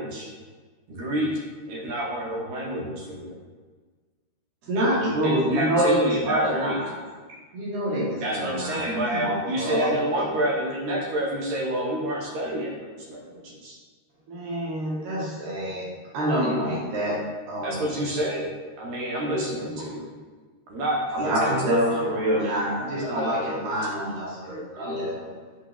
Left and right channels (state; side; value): late; left; 13 ms